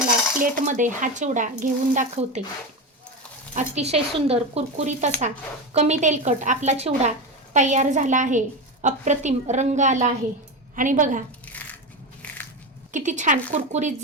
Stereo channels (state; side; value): normal; both; correlation 0.19